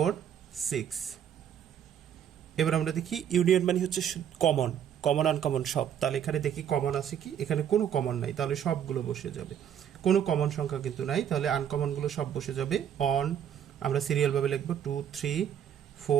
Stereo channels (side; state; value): left; quieter; 9.2 dB